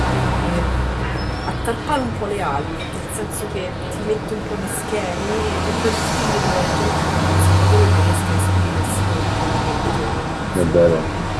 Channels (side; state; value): both; identical; correlation 1.00